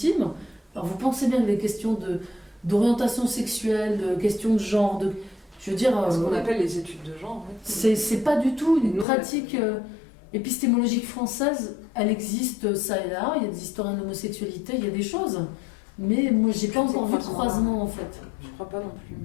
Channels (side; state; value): right; drops out; at 9.1 s